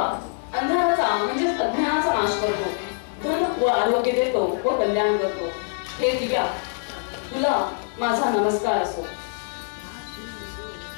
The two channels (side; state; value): right; silent; 62 dB below the other